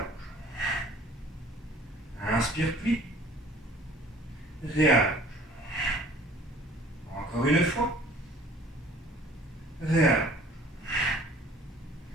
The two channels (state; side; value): normal; both; correlation 0.51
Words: Inspire, plie. Réallonge. Encore une fois. Réallonge.